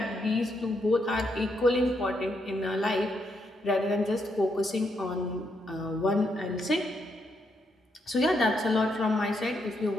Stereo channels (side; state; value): both; normal; correlation 0.78